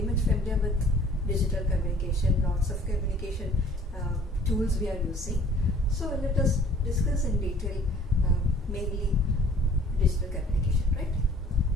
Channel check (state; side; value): normal; both; correlation 0.53